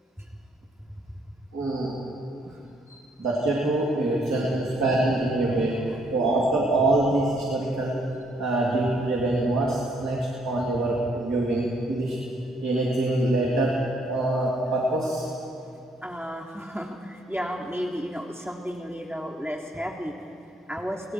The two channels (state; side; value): normal; both; correlation 0.69